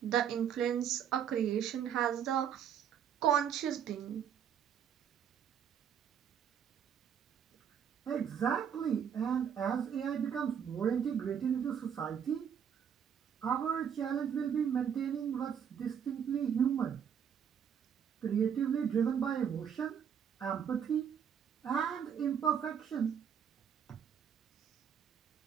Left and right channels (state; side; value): quieter; left; 8.2 dB